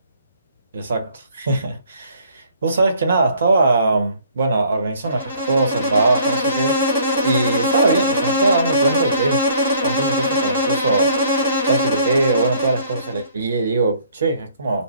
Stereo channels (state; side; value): inverted; both; correlation -0.59